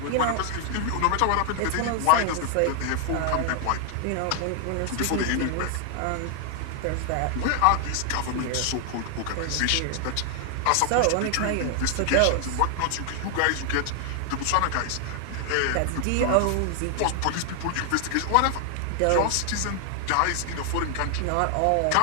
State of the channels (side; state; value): both; different; correlation 0.00